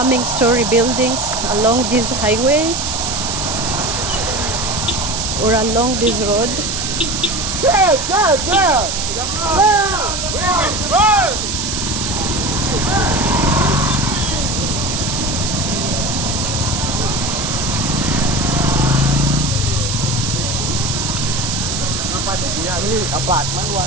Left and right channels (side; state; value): right; noise; hiss, 2 dB below the sound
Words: story buildings along this highway or along this road.